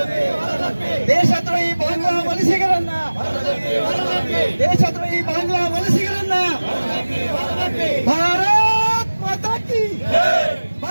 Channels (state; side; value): inverted; both; correlation -1.00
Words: ದೇಶದ್ರೋಹಿ ಬಾಂಗ್ಲಾ ವಲಸಿಗರನ್ನ, ದೇಶದ್ರೋಹಿ ಬಾಂಗ್ಲಾ ವಲಸಿಗರನ್ನ. ಭಾರತ್ ಮಾತಾ ಕಿ,